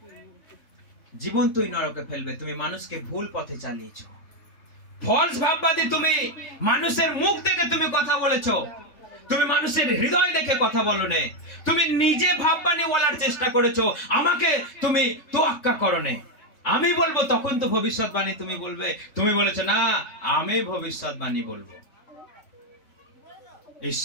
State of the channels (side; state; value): right; late; 3.5 ms